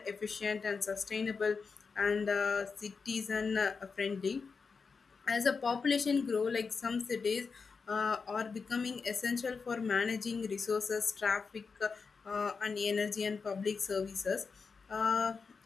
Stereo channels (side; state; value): right; quieter; 5.1 dB